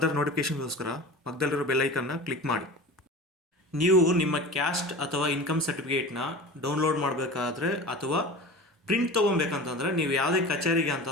ನೋಟಿಫಿಕೇಷನ್ಗೋಸ್ಕರ ಪಕ್ಕದಲ್ಲಿರೋ ಬೆಲ್ ಐಕನ್ನ ಕ್ಲಿಕ್ ಮಾಡಿ. ನೀವು ನಿಮ್ಮ ಕ್ಯಾಸ್ಟ್ ಅಥವಾ ಇನ್ಕಮ್ ಸರ್ಟಿಫಿಕೇಟ್ನ ಡೌನ್ಲೋಡ್ ಮಾಡಬೇಕಾದ್ರೆ ಅಥವಾ ಪ್ರಿಂಟ್ ತೊಗೊಬೇಕಂತಂದರೆ ನೀವು ಯಾವುದೇ ಕಚೇರಿಗೆ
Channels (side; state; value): both; normal; correlation 0.34